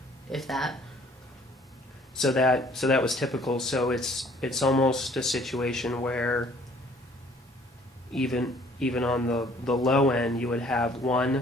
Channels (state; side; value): normal; both; correlation 0.58